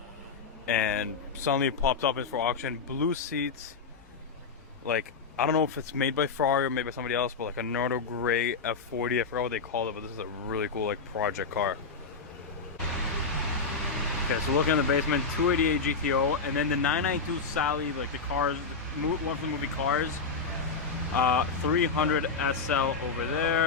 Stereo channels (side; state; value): right; quieter; 4.9 dB